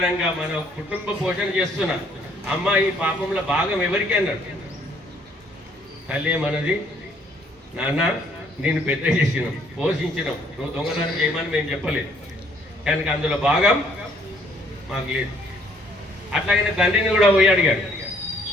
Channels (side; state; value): both; normal; correlation 0.63